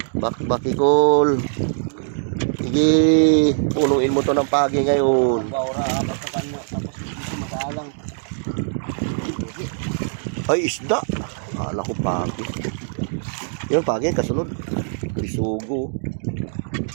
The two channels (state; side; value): silent; left; digital silence